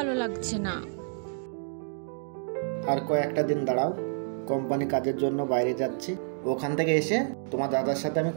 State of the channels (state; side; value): silent; left; digital silence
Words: লাগছে না। আর কয়েকটা দিন দাঁড়াও, কোম্পানি কাজের জন্য বাইরে যাচ্ছি, ওখান থেকে এসে তোমার দাদার সাথে আমি